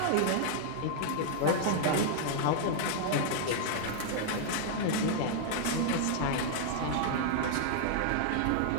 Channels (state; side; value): different; both; correlation -0.01